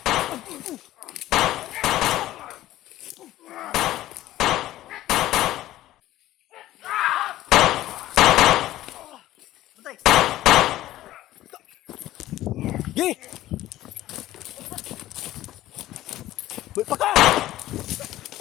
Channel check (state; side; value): quieter; right; 14.9 dB